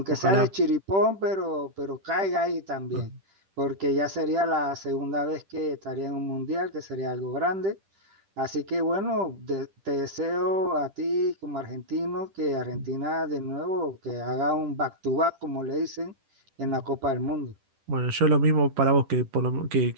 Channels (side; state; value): left; late; 10 ms